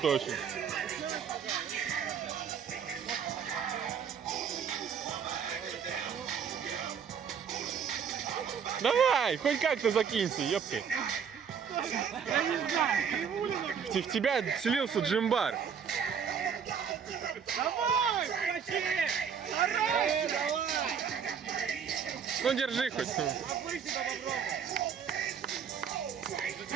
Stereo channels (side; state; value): left; quieter; 7.1 dB